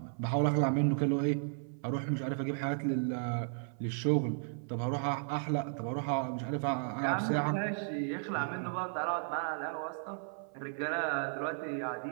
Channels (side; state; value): left; silent; 55 dB below the other